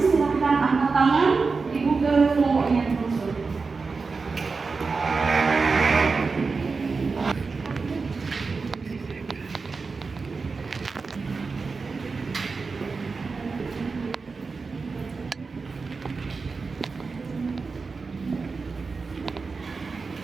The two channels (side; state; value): left; quieter; 4.5 dB